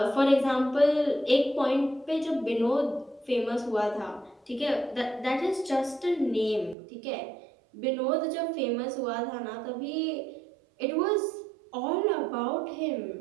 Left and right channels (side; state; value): left; drops out; at 6.8 s